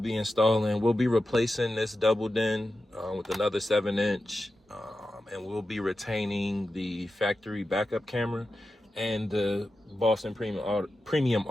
installing, we'll be replacing this double din with another 7-inch, and we'll be retaining the factory backup camera and the Boston premium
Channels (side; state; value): both; normal; correlation 0.91